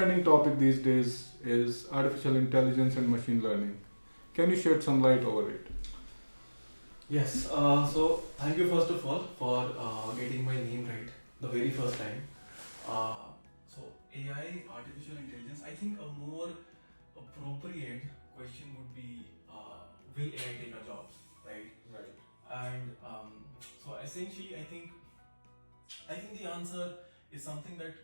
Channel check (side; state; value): both; inverted; correlation -1.00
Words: topic these days is artificial intelligence and machine learning. Can you shed some light over it? Yes, so thank you first of all for getting my name right the very first time. So AI, artificial intelligence, I think a more appropriate question would be, will AI take our jobs, right? Right. And so essentially, I think the answer is something that